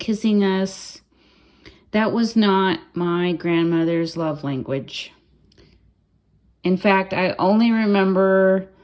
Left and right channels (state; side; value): identical; both; correlation 1.00